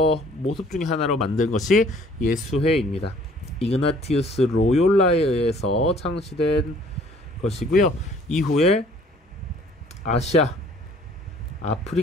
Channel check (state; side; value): normal; both; correlation 0.56